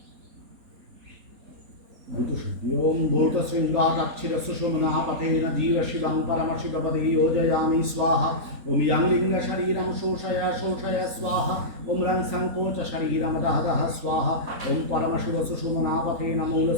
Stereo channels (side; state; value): left; late; 3.9 ms